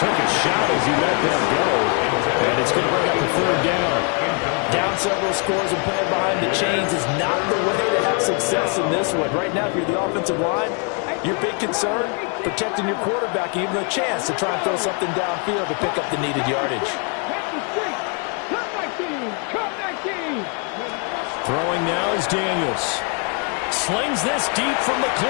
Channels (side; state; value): right; quieter; 37.2 dB